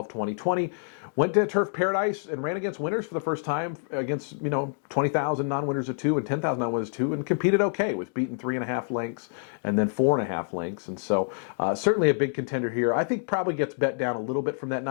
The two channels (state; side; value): silent; right; digital silence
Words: 2020. Went to Turf Paradise and ran against winners for the first time against, you know, 20,000 non-winners of 2 and 10,000 non-winners of 2, and competed okay. Was beaten 3.5 lengths and then 4.5 lengths. And so certainly a big contender here. I think probably gets bet down a little bit from that